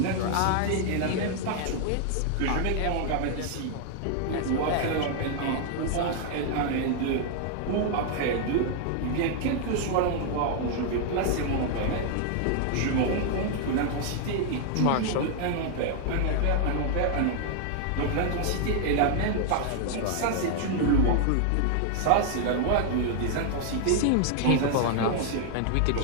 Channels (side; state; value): both; different; correlation 0.00